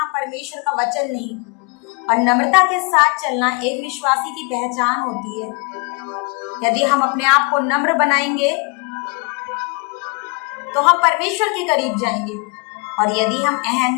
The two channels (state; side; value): quieter; right; 32.3 dB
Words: परमेश्वर का वचन नहीं। और नम्रता के साथ चलना एक विश्वासी की पहचान होती है। यदि हम अपने आप को नम्र बनाएंगे तो हम परमेश्वर के करीब जाएंगे, और यदि हम